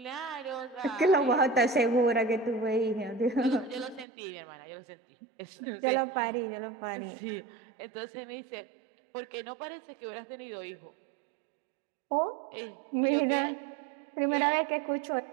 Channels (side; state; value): left; drops out; at 4.0 s